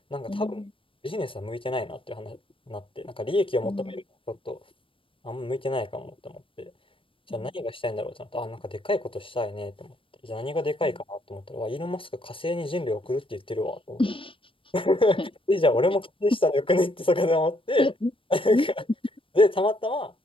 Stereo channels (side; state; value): right; late; 0.25 ms